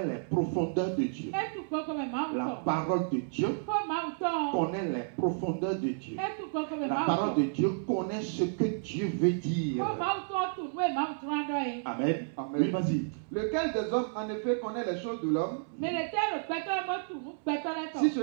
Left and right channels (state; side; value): silent; left; 57 dB below the other